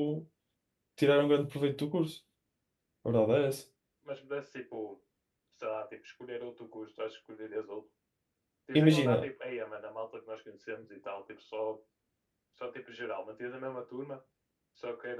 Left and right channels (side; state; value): both; identical; correlation 1.00